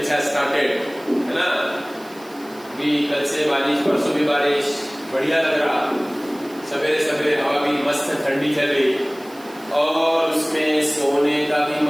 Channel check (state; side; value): noise; right; hiss, 23 dB below the sound